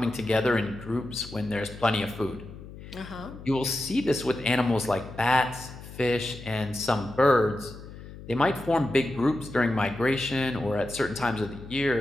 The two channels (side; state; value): left; noise; hum, 15 dB below the sound